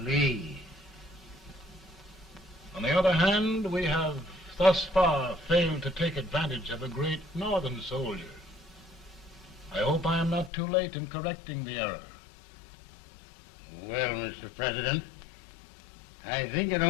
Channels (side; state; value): right; drops out; at 10.5 s